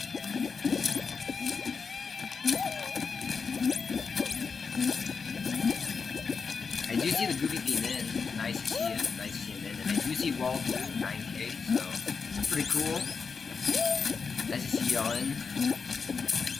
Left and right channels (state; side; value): quieter; right; 5.4 dB